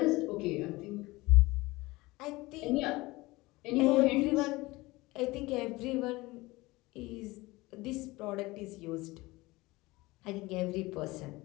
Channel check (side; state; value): right; quieter; 21.1 dB